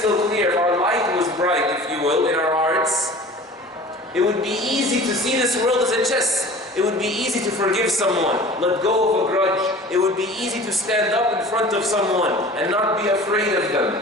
clear, if our light was bright, if you will, in our hearts, it would be easy to see this world as a chess. It would be easy to forgive someone, let go of a grudge. It would be easy to stand up in front of someone and not be afraid of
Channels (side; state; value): both; normal; correlation 0.42